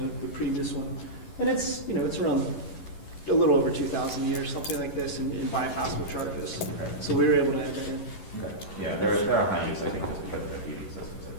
the previous one. And it's, you know, it's around a little over 2,000 a year, something like this, in bypassable charges. Okay. So we were able to add that in. Okay. Yeah, there are high use, I think, just because of the heating systems that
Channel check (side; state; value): right; late; 11 ms